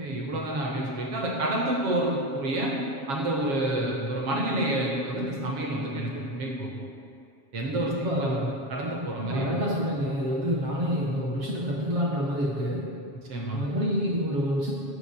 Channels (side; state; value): left; late; 7.3 ms